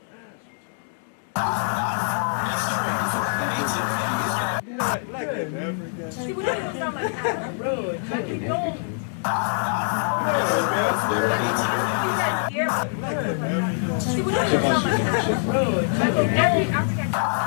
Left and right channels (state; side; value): silent; right; digital silence